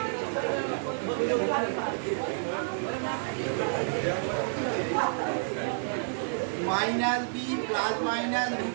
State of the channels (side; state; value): left; silent; digital silence